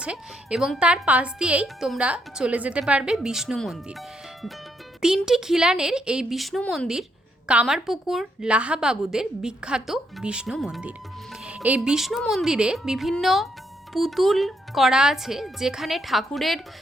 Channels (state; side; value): normal; both; correlation 0.76